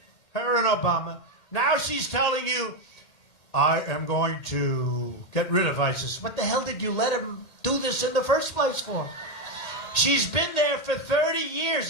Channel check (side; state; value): right; late; 1.8 ms